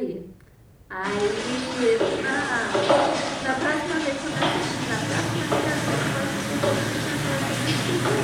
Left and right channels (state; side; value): identical; both; correlation 1.00